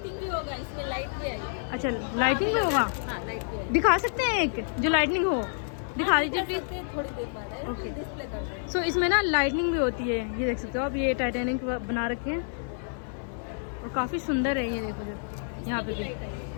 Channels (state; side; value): silent; right; 59 dB below the other